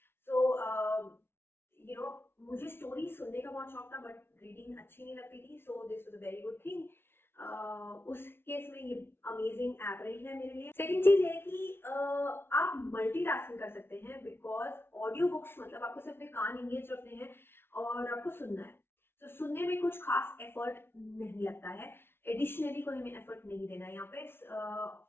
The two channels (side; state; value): right; late; 0.11 ms